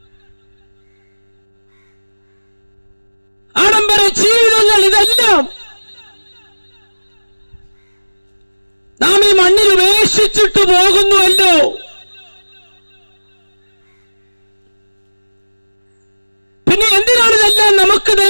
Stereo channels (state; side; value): inverted; both; correlation -1.00